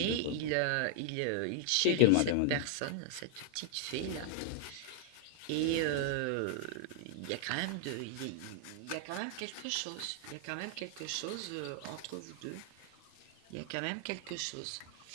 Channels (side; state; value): both; different; correlation -0.01